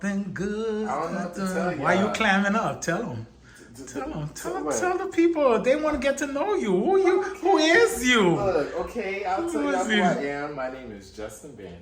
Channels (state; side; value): identical; both; correlation 1.00